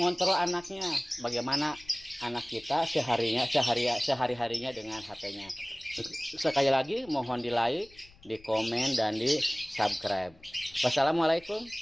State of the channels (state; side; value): noise; left; rumble, 25 dB below the sound